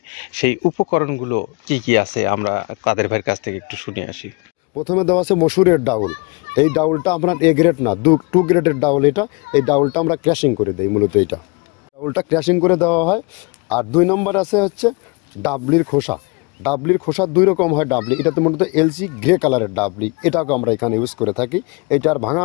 সেই উপকরণগুলো কি কি আছে। আমরা কাদের ভাইয়ের কাছ থেকে একটু শুনে আসি। প্রথমে দেওয়া আছে মসুরের ডাউল। এই ডাউলটা আপনার এ গ্রেড না, 2 গ্রেডের ডাউল এটা। এই ডাউলটা আমরা ক্র্যাশিং করে দিই, মূলত এইটা ডাউলটা ক্র্যাশিং করে দেওয়া হয়। আর 2 নম্বর আছে হচ্ছে ডাবলির খোসা। ডাবলির খোসা 2 রকম হয় ডাবলি, এটাতে মূলত এলসি গ্রে কালারের ডাবলি, এটাকে আমরা এখানে ইউজ করে থাকি। এটা আর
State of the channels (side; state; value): right; quieter; 29.8 dB